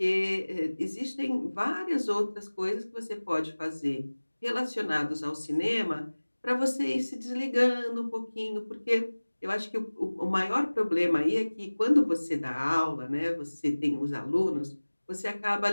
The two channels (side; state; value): both; inverted; correlation -1.00